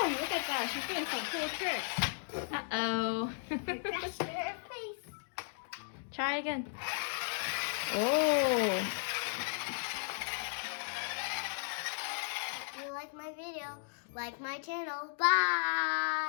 look at that. She's doing some cool tricks. Uh-oh. Crashed her face. Try again. Oh. If you like my video, like my channel.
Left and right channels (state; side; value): silent; right; digital silence